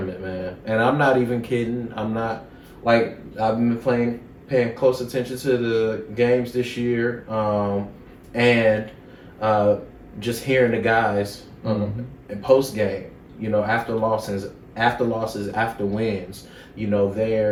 man. And I'm not even kidding. I'm not like I've been paying close attention to the games this year, and just hearing the guys in post game, after losses, after wins,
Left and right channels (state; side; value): identical; both; correlation 1.00